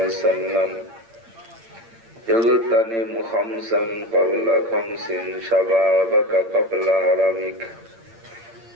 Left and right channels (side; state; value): left; late; 8.7 ms